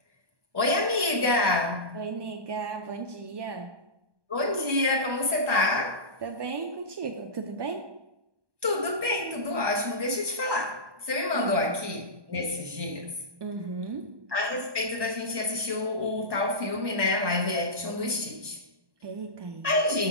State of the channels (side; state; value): left; late; 1.2 ms